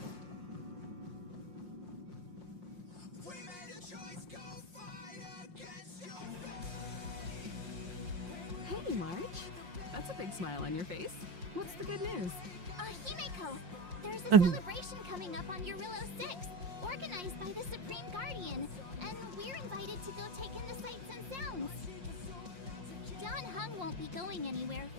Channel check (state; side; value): late; left; 5.6 ms